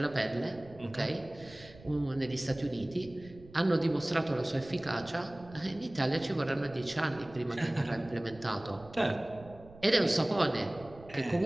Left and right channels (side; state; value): right; noise; rumble, 20 dB below the sound